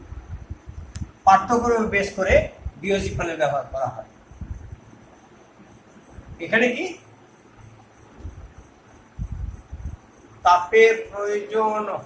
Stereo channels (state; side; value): identical; both; correlation 1.00